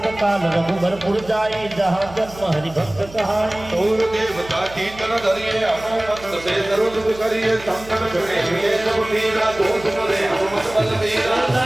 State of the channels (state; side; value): noise; right; hum, 18 dB below the sound